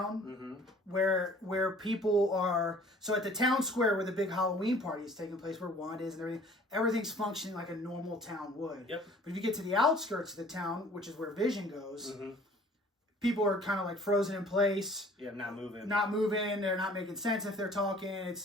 where people are. So at the town square where the big Halloween party is taking place, where Wanda is and everything's functioning like a normal town would. Yep. But if you get to the outskirts of the town, which is where Vision goes, people are kind of frozen in place. Yeah, not moving. They're not making sense if they're talking.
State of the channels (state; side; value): normal; both; correlation 0.52